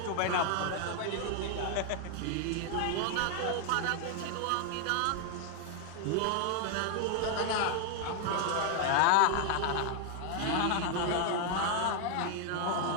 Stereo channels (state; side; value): different; both; correlation 0.00